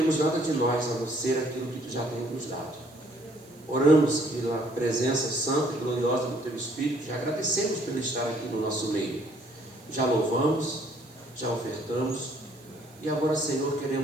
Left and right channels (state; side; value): noise; right; hiss, 27 dB below the sound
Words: nada de nós a não ser aquilo que Tu já tem nos dado. Oramos pela presença santa e gloriosa do Teu Espírito. Já agradecemos por estar aqui no nosso meio. Já louvamos, já ofertamos. E agora, Senhor,